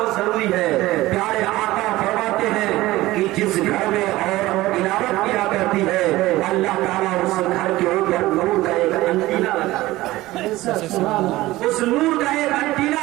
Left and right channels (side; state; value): left; quieter; 17.8 dB